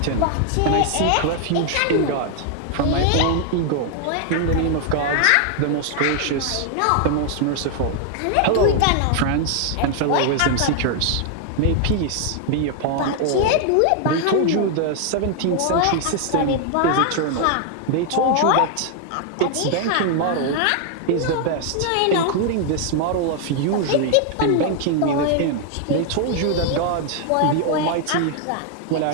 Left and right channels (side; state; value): both; different; correlation 0.00